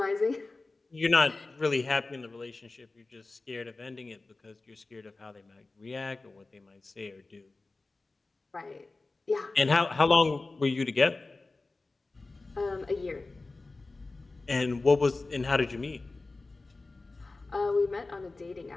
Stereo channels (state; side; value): quieter; right; 3.4 dB